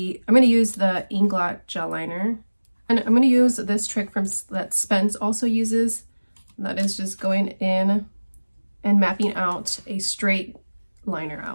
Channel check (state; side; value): inverted; both; correlation -1.00